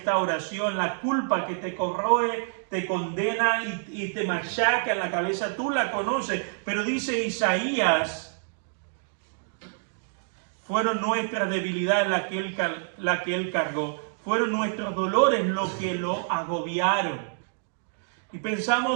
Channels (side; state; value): left; silent; digital silence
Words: la culpa que te corroe, te condena y te machaca en la cabeza. Tú la conoces, pero dice Isaías, fueron nuestras debilidades la que Él cargó. Fueron nuestros dolores lo que lo agobiaron. Y